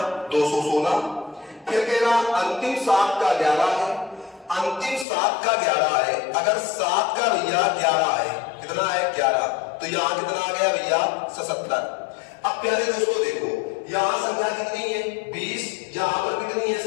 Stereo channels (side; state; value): right; drops out; at 5.1 s